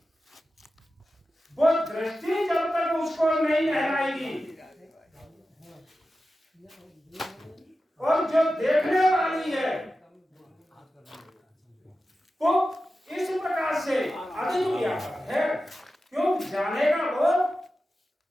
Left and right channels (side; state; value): both; normal; correlation 0.93